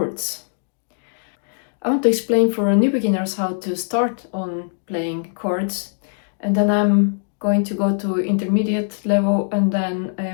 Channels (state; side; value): silent; right; digital silence